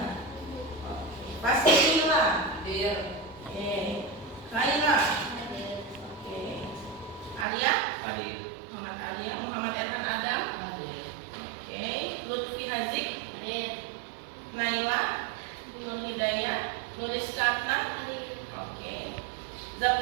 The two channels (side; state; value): left; drops out; at 7.5 s